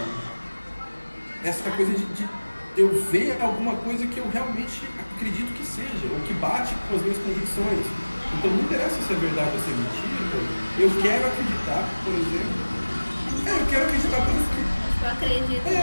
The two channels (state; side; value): inverted; both; correlation -1.00